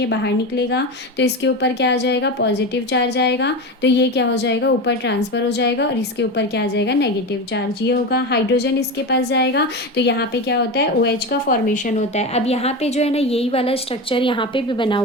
बाहर निकलेगा, तो इसके ऊपर क्या आ जाएगा, पॉजिटिव चार्ज आएगा, तो ये क्या हो जाएगा, ऊपर ट्रांसफर हो जाएगा, और इसके ऊपर क्या आ जाएगा, नेगेटिव चार्ज। ये होगा, हाइड्रोजन इसके पास जाएगा, तो यहाँ पे क्या होता है, OH का फॉर्मेशन होता है। अब यहाँ पे जो है ना, यही वाला स्ट्रक्चर यहाँ पे भी बना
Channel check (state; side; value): normal; both; correlation 0.21